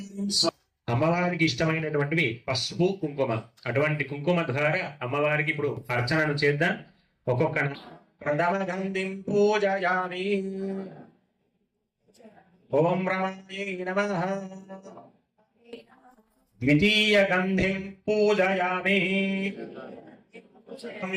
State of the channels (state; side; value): identical; both; correlation 1.00